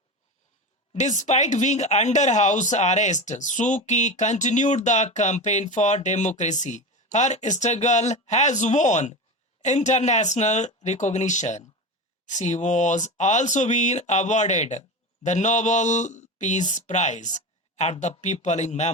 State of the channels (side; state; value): both; normal; correlation 0.24